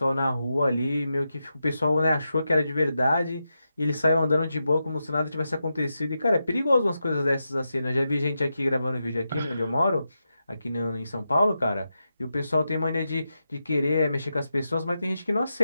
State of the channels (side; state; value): both; inverted; correlation -0.88